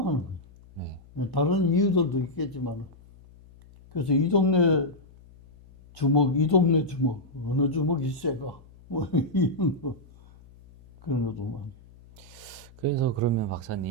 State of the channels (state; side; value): noise; left; hum, 24 dB below the sound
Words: 거예요. 네. 다른 이유들도 있겠지만 그래서 이 동네 주먹, 이 동네 주먹, 어느 주먹이 세가 뭐 이런 거 그런 것도 많이. 그래서 그러면